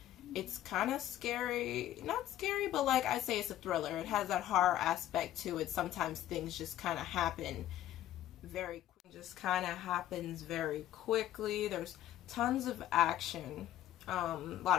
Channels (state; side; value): quieter; right; 12.8 dB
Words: it's kind of scary, not scary, but like I say, it's a thriller. It has that horror aspect to it. Sometimes things just kind of happen very quickly. There's tons of action, a lot